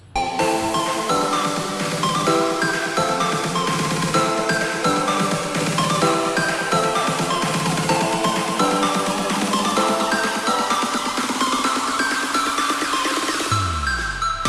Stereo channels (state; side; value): identical; both; correlation 1.00